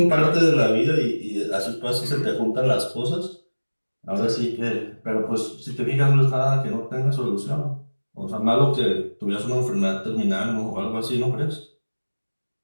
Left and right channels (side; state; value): both; inverted; correlation -1.00